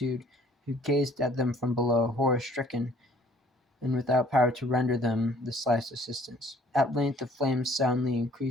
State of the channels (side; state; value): both; normal; correlation 0.57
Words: who gazed at them from below, horror-stricken, and without power to render them the slightest assistance. At length the flames, soundly